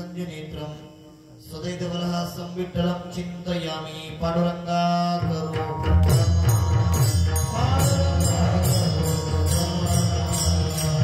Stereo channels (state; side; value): identical; both; correlation 1.00